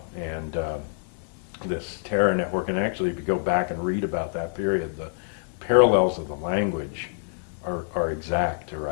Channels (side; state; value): right; silent; digital silence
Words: and this terror network. And actually, if you go back and read about that period, the parallels of the language are exact to